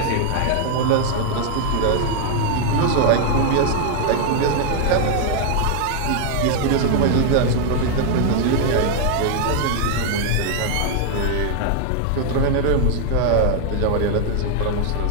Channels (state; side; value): different; both; correlation 0.00